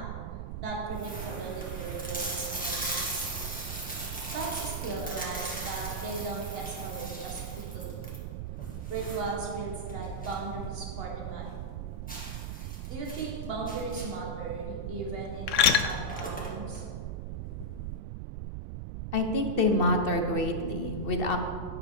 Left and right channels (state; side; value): noise; right; rumble, 4 dB below the sound